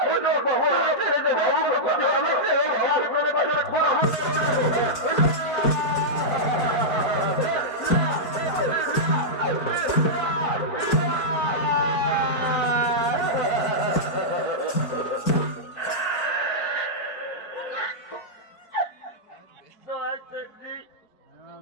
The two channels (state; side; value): late; right; 4.5 ms